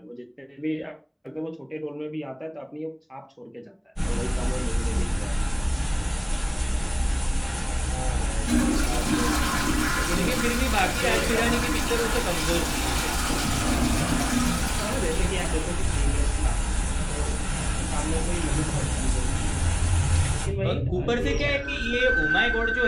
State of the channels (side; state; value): both; identical; correlation 1.00